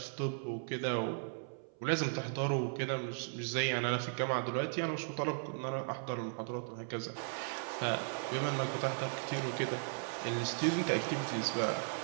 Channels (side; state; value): left; silent; 53 dB below the other